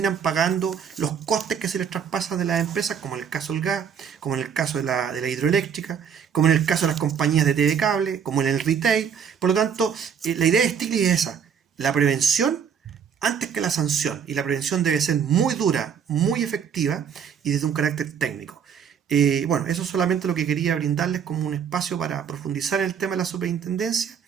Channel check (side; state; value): left; quieter; 7.4 dB